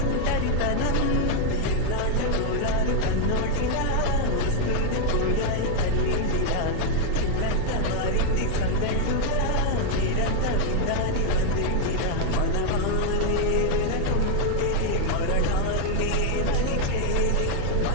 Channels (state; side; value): different; both; correlation 0.00